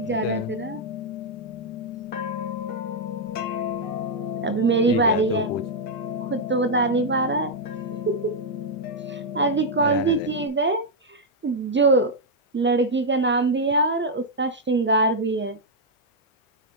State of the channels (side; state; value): both; normal; correlation -0.03